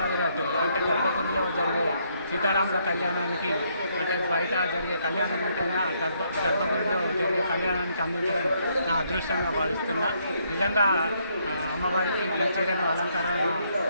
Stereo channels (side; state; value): both; inverted; correlation -0.72